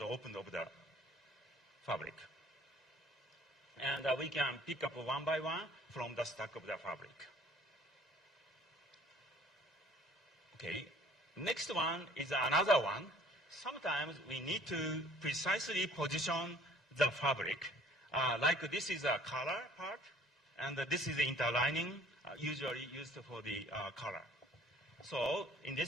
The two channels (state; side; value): normal; both; correlation 0.54